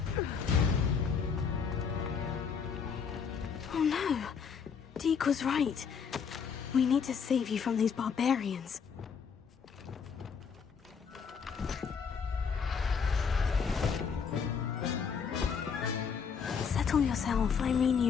Oh no. Deke was right. We need to save you from these barbarians. Settle yourself. I mean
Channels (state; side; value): quieter; right; 6.3 dB